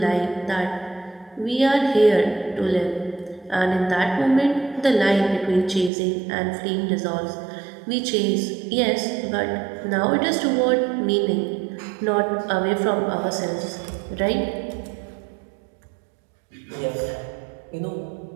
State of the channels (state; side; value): drops out; left; at 5.9 s